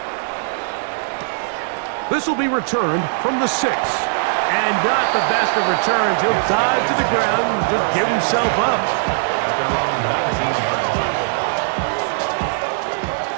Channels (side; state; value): left; silent; 66 dB below the other